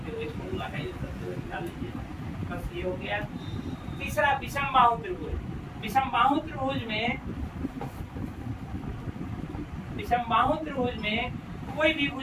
हुए फॉर्मूला का यूज करते हुए निकाल लीजिए। बस ये हो गया। तीसरा विषमबाहु त्रिभुज। विषमबाहु त्रिभुज में कोई भी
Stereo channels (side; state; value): both; identical; correlation 1.00